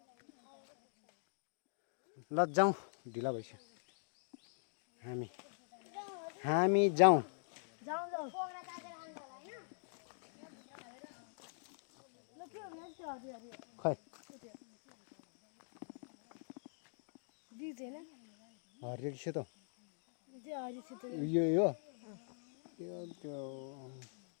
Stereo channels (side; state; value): right; silent; digital silence